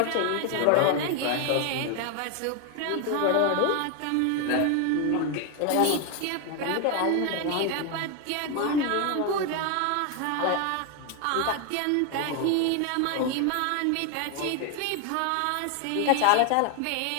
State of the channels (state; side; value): different; both; correlation 0.01